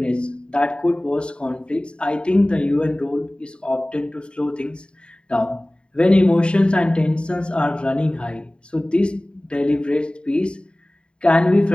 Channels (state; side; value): late; right; 0.053 ms